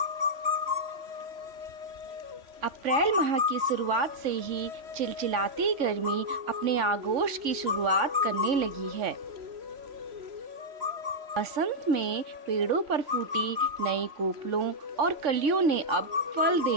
अप्रैल माह की शुरुआत से ही चिलचिलाती गर्मी अपने आगोश की शुरुआत करने लगी है। बसंत में पेड़ों पर फूटी नई कोपलों और कलियों ने अब फल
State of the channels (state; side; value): late; left; 3.5 ms